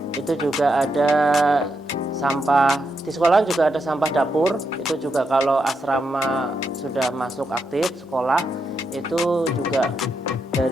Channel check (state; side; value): normal; both; correlation 0.83